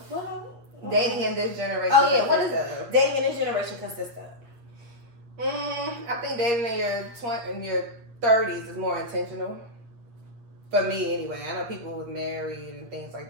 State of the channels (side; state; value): left; late; 8.5 ms